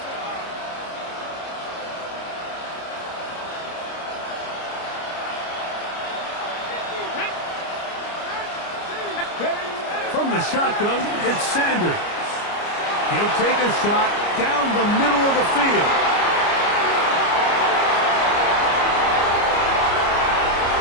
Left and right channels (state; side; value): late; right; 29 ms